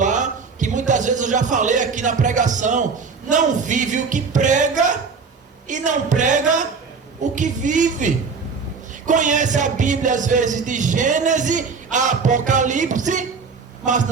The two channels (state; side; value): quieter; left; 5.1 dB